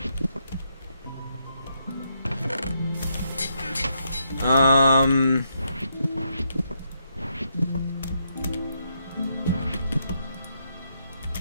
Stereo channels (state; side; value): inverted; both; correlation -0.78